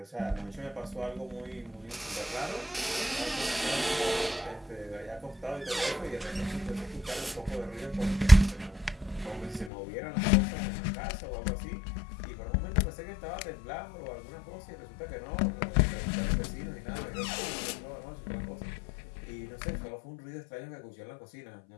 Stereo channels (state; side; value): drops out; right; at 9.7 s